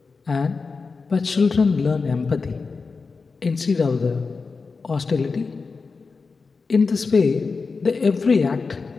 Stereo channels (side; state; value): right; quieter; 4.5 dB